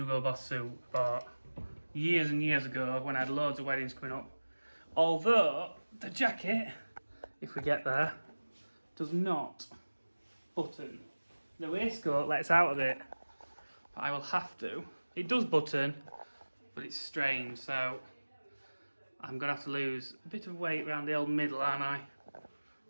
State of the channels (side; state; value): both; inverted; correlation -1.00